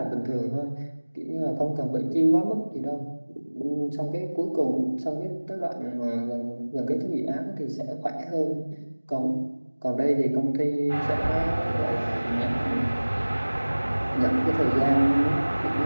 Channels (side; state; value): both; inverted; correlation -1.00